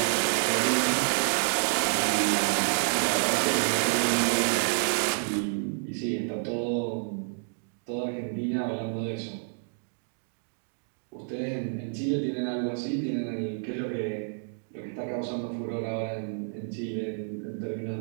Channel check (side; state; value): left; silent; digital silence